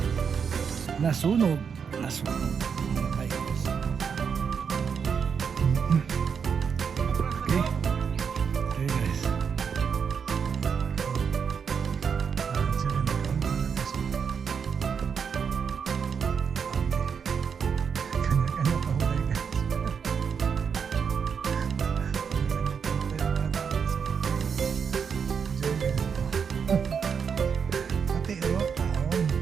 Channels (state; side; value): quieter; left; 6.6 dB